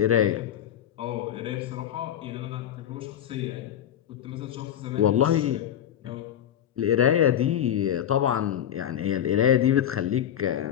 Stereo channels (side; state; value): right; quieter; 10.4 dB